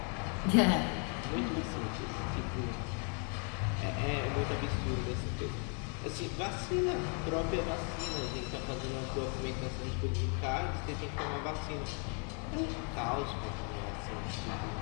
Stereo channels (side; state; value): right; quieter; 39.1 dB